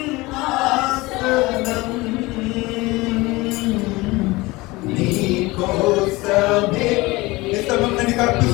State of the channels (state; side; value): quieter; right; 21.8 dB